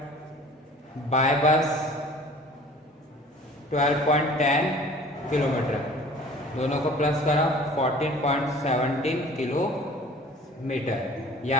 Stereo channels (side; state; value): both; normal; correlation 0.47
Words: by bus 12.10 kilometer, दोनों को plus करा 14.17 kilometer. यह